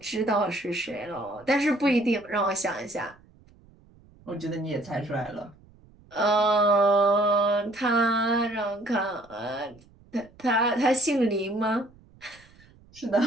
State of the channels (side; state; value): right; noise; rumble, 27 dB below the sound